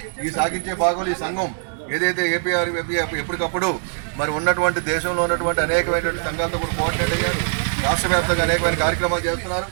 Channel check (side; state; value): left; silent; digital silence